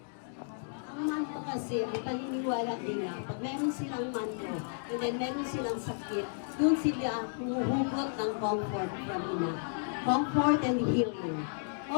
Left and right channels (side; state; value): right; silent; digital silence